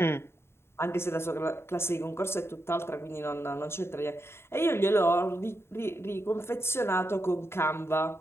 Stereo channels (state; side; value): late; right; 0.12 ms